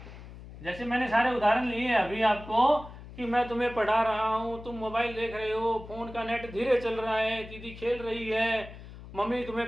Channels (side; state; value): left; noise; hum, 15 dB below the sound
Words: जैसे मैंने सारे उदाहरण लिए अभी आपको कि मैं तुम्हें पढ़ा रहा हूं, तुम मोबाइल देख रहे हो, फोन का नेट धीरे चल रहा है, दीदी खेल रही है, मम्मी